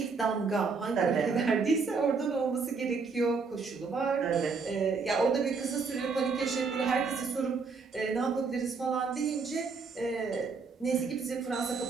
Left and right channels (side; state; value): left; quieter; 4.8 dB